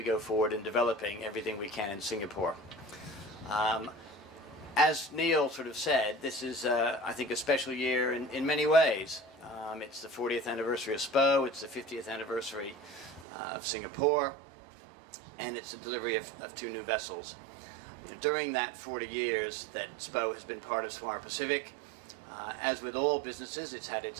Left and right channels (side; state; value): left; drops out; at 13.2 s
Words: go forward in developing everything we can in Singapore. As Neil sort of said, this is, I think, a special year in many ways. It's the 40th anniversary of SPO, it's the 50th anniversary of Singapore, and it's the delivery of two new vessels. During that 40 years that SPO has been part of Swire Pacific, as with all businesses, it's had its